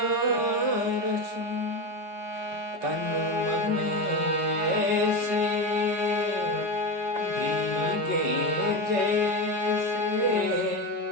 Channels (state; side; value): late; left; 5.3 ms